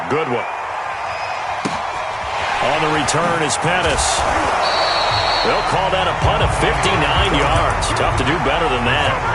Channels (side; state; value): both; identical; correlation 1.00